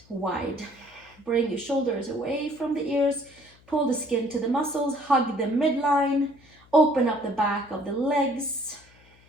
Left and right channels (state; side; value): noise; left; hum, 28 dB below the sound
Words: wide. Bring your shoulders away from the ears, pull the skin to the muscles, hug the midline, open up the back of the legs.